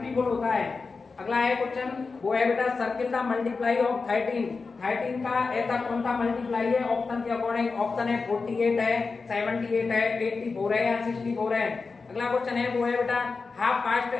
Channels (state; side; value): quieter; right; 4.4 dB